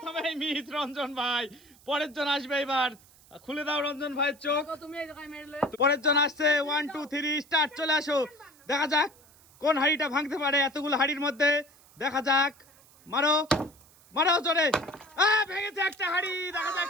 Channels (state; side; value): noise; right; hiss, 27 dB below the sound